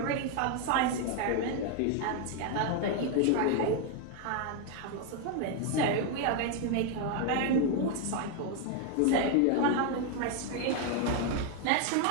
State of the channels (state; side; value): different; both; correlation 0.01